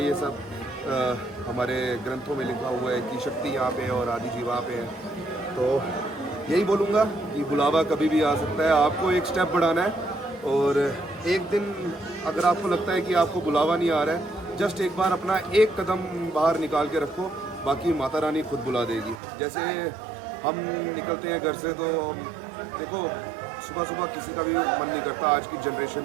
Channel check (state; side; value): drops out; left; at 19.2 s